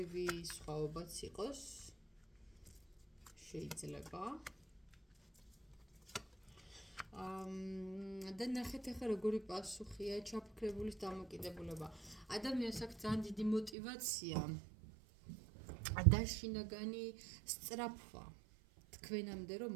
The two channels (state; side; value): drops out; left; at 13.7 s